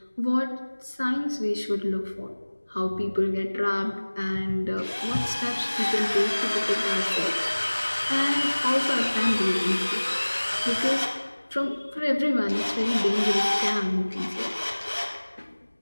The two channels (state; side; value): inverted; both; correlation -1.00